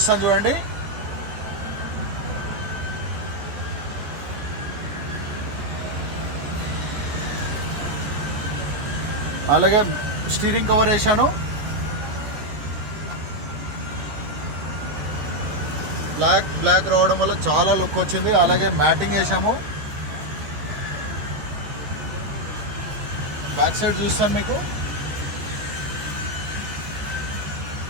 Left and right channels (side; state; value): left; late; 14 ms